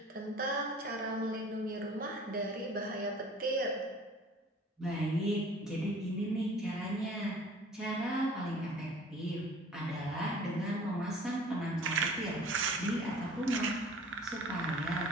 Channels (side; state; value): both; normal; correlation 0.49